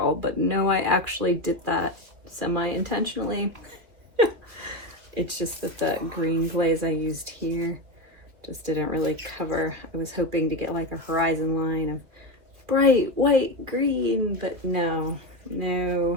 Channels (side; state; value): left; late; 2.7 ms